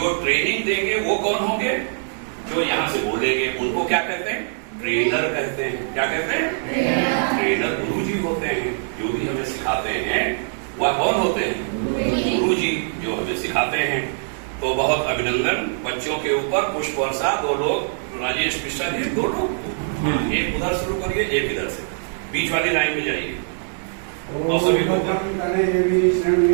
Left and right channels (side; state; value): left; silent; digital silence